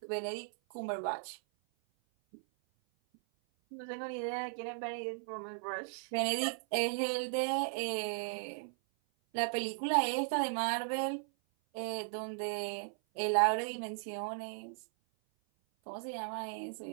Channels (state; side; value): silent; left; 53 dB below the other